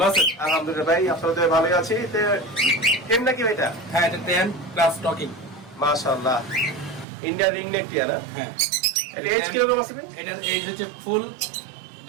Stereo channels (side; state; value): left; drops out; at 7.1 s